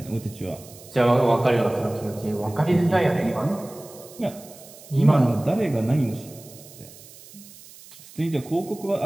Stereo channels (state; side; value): noise; right; hiss, 20 dB below the sound